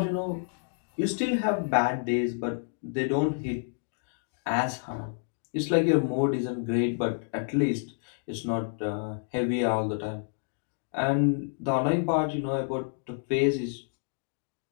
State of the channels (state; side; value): silent; right; digital silence